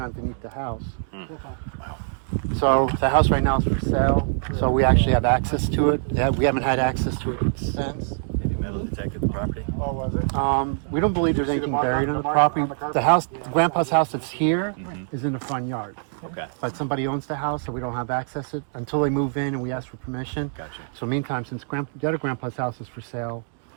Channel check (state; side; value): silent; left; digital silence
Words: underneath the house. So the house right now is for sale, so we actually have access to it. Yeah, we haven't had access to it since. Have you metal detected the property. Oh, was it? We don't believe there's anything buried on the property. The house, Grandpa's house that's here, is in the front yard. Okay. But somebody owns the house, so we don't have access to it until they move in and we ask for permission. Gotcha. So meantime, since the other Grandpa's house is for sale,